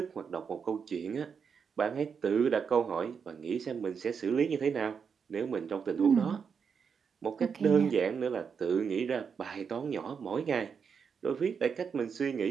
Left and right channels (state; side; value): quieter; left; 6.4 dB